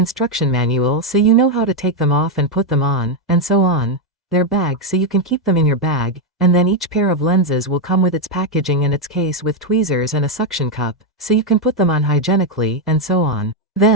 manual so you know how to take them off and put them on, and so on. Their bag so you can keep them in your bag, and then each pair of lenses will come with its packaging and its case with tweezers and a suction cup, so you can put them on hygienically, and so on.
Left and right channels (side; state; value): both; normal; correlation 0.03